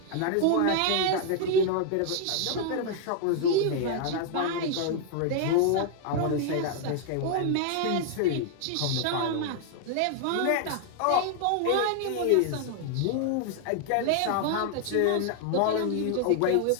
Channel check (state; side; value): different; both; correlation 0.00